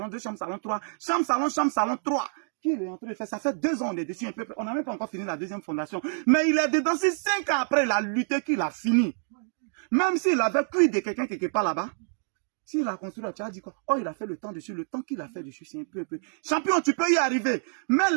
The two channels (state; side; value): silent; left; 60 dB below the other